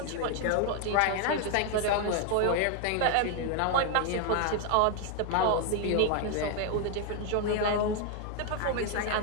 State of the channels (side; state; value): both; different; correlation 0.01